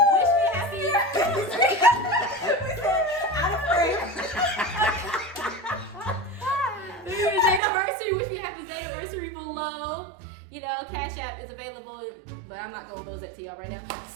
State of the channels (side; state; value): left; drops out; at 7.6 s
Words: wish me happy. Out of frame. It's anniversary. Wish me happy anniversary below. You know, Cash App is available, but I'm not going to close that to y'all right now.